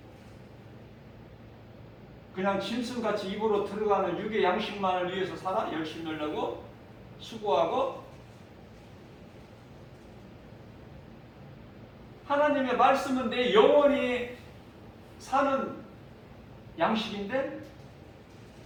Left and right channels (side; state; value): both; identical; correlation 1.00